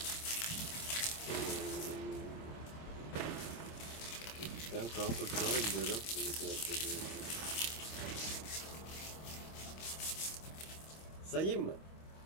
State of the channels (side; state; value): right; late; 25 ms